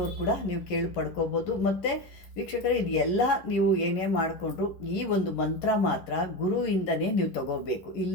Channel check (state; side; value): late; right; 11 ms